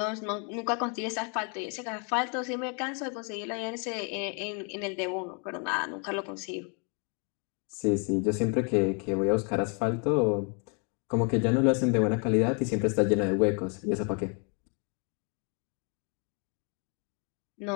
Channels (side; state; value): right; quieter; 37.5 dB